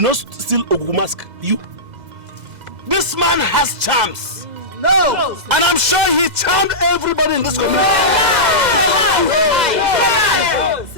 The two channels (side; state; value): left; late; 2.0 ms